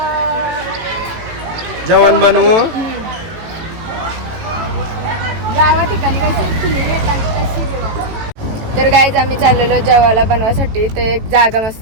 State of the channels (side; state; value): left; late; 18 ms